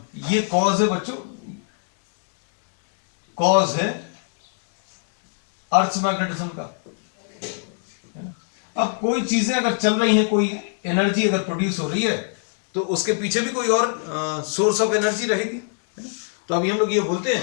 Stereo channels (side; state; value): right; silent; digital silence